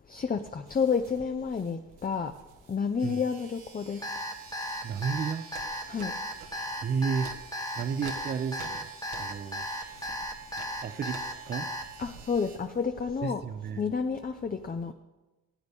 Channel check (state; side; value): normal; both; correlation 0.45